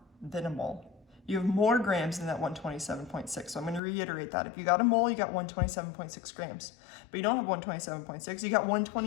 than a mole. You have more grams than that 127.6. So I'm going to reiterate that. If you got a mole, you got 127.6 grams. But you don't have 127.6, you got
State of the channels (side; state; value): right; drops out; at 3.8 s